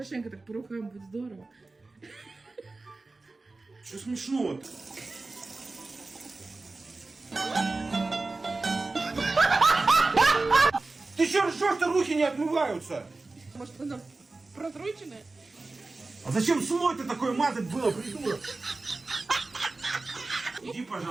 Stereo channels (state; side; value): quieter; left; 3.4 dB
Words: так по рукам, будет здорово. Что смешного-то? Ты че ржешь-то, руки не отмываются? Может, она просроченная? А зачем слой-то такой мазать было, придурок? Иди,